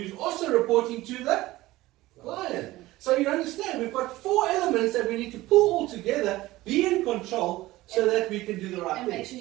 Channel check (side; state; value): left; quieter; 17.8 dB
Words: also reporting to the client. So you understand, we've got 4 elements that we need to pull all together, be in control, so that we can do the right and thing. make sure